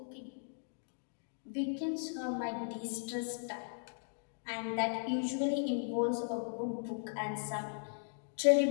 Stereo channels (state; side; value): silent; right; digital silence